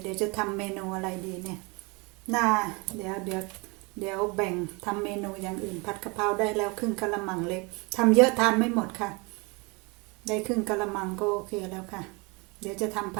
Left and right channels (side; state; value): left; quieter; 28.7 dB